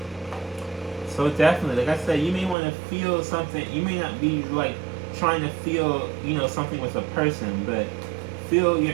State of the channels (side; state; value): left; drops out; at 2.6 s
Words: So definitely, like I said, you may want to feel something. You may not be like trying to feel, something with a person, but feel your